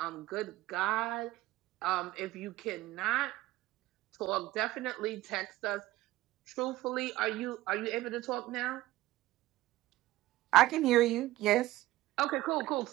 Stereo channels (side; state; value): left; quieter; 16.7 dB